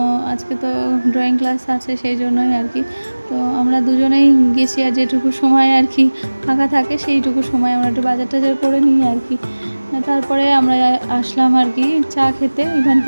আজকে তো ড্রয়িং ক্লাস আছে, সেই জন্যই আর কি। তো আমরা দুজনেই গেছি, আর যেটুকু সময় আর কি ফাঁকা থাকে সেইটুকু সময় আমরা একটু বাজার টাজার করে নিই আর কি। তারপরে আমরা আসলাম আর কি চা খেতে,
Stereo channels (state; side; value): inverted; both; correlation -1.00